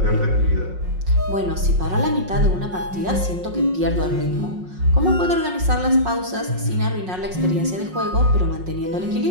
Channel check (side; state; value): left; late; 5.5 ms